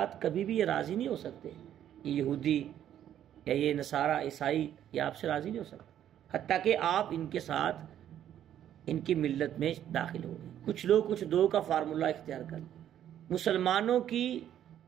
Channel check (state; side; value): quieter; left; 10.7 dB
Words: کبھی بھی یہ راضی نہیں ہو سکتے، یہ یہودی یا یہ نصارہ عیسائی یہ آپ سے راضی نہیں ہو سکتے حتیٰ کہ آپ ان کے ساتھ ان کی ملت میں داخل ہو گئے. کچھ لوگ کچھ دو کا فارمولہ اختیار کر. مسلمانوں کی